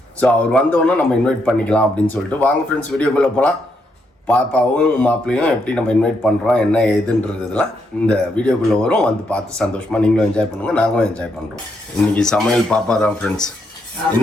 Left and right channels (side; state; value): both; normal; correlation 0.78